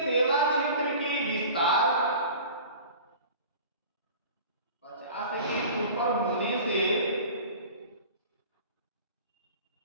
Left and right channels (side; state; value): both; inverted; correlation -0.40